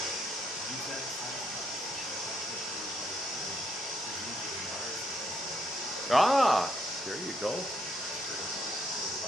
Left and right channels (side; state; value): both; normal; correlation 0.74